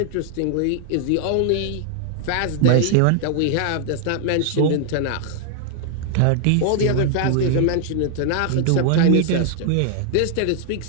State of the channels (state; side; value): different; both; correlation 0.00